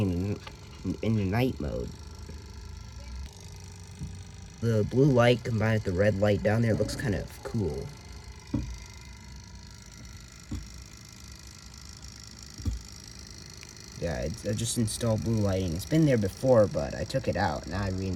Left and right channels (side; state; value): both; identical; correlation 1.00